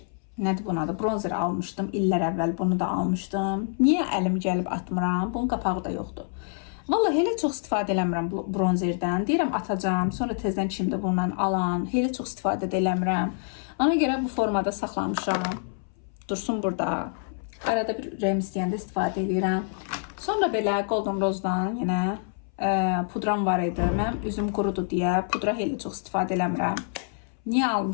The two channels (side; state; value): right; silent; 60 dB below the other